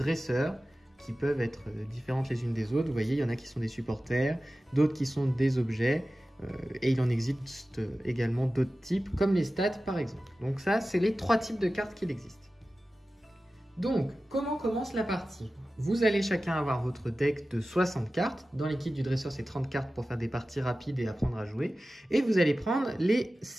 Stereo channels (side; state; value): both; normal; correlation 0.95